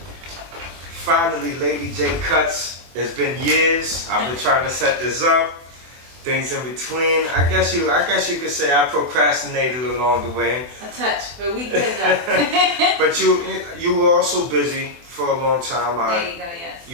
Finally, Lady Jae Kutz. It's been years. I've been trying to set this up. Things in between. I guess you could say I procrastinated along the way. A touch, but we good though. But you were also busy for a long time. There you go, yes.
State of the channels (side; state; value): left; late; 24 ms